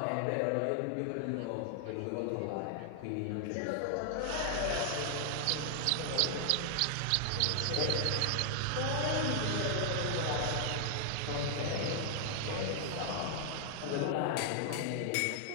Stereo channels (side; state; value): both; different; correlation 0.00